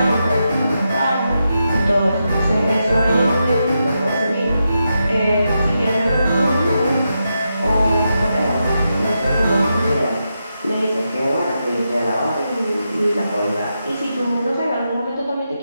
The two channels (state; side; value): inverted; both; correlation -0.86